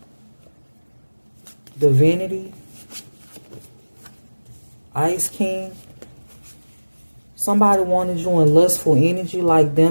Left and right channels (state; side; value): inverted; both; correlation -1.00